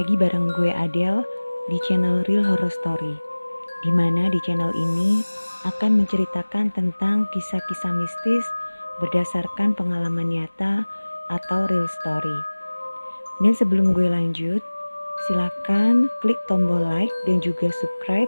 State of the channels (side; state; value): both; inverted; correlation -1.00